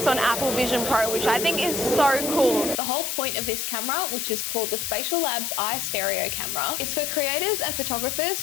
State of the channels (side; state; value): left; noise; hiss, 3 dB below the sound